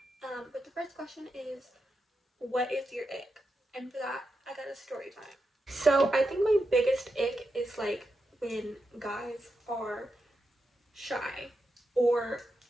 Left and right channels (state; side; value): normal; both; correlation 0.87